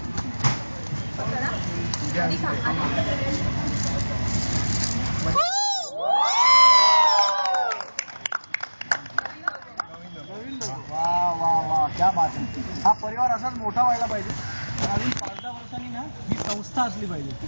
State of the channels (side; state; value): both; inverted; correlation -1.00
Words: वा वा वा क्या बात आहे. हा परिवार असाच मोठा व्हायला पाहिजे. अजून 5-10 वर्षांनी ना ही संस्था असली पाहिजे.